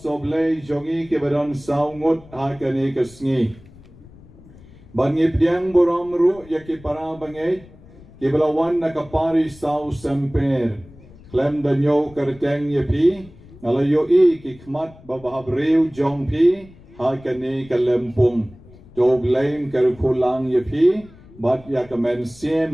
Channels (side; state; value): left; noise; rumble, 22 dB below the sound